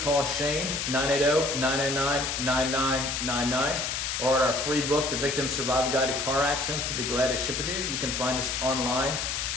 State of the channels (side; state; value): left; noise; hiss, 2 dB below the sound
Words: Shane, 980-909-9999, or at our free book, The Victim Survival Guide to Car Accidents. We'll be glad to ship it to you. You can find us online